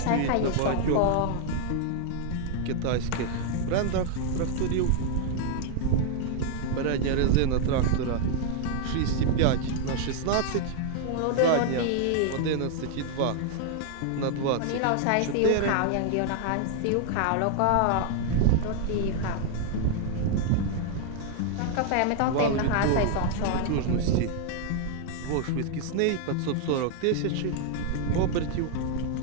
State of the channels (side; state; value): both; different; correlation 0.00